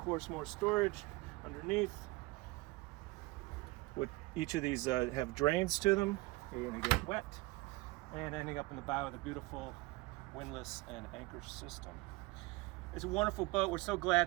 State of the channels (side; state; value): left; quieter; 22.4 dB